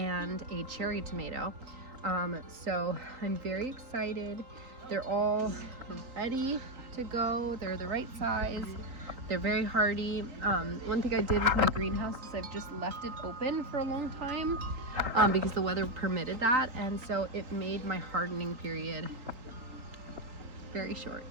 a cherry tomato. So I'm very excited. They're all ready to go. They're the right size. They're very hardy. One thing I did with my greenhouse is I've just left it open for a long time because the weather permitted that, and so it made my hardening period very short.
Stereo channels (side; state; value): left; late; 3.8 ms